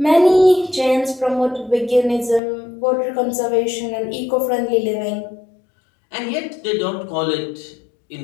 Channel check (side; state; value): right; drops out; at 2.4 s